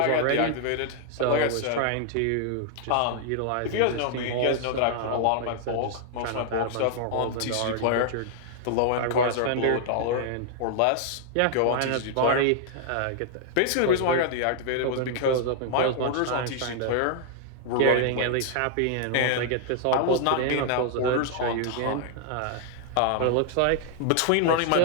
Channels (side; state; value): both; different; correlation -0.01